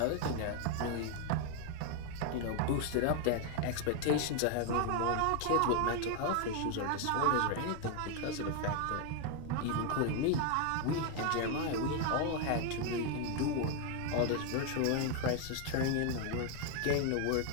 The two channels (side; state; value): both; different; correlation 0.01